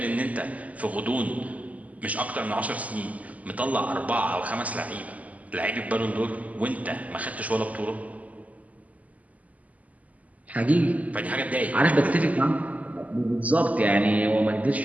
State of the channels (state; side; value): late; left; 0.073 ms